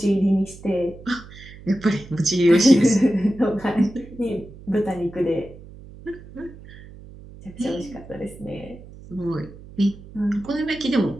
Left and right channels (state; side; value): noise; right; hum, 18 dB below the sound